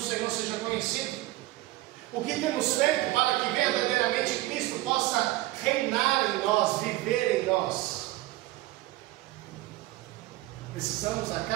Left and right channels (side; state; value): left; quieter; 17.5 dB